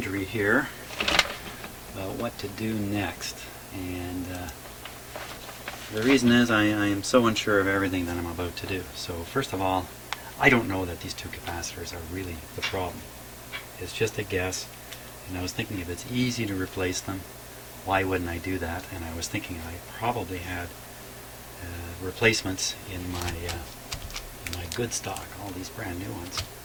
here about what to do next. And the reason is I am so unsure of everything that I'm about to do. So first of all, I don't know that these two capacitors are really the problem. It's just a guess, and I was thinking if it's easy to replace them, why wouldn't I do that? And I was thinking I probably had replacements in my good stock, all these brand new ones.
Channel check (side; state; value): both; identical; correlation 1.00